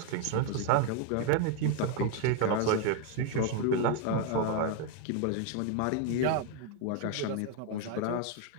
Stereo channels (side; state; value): both; different; correlation 0.01